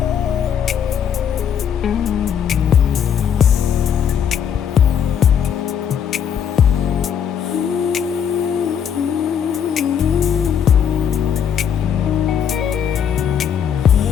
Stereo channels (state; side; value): quieter; right; 8.2 dB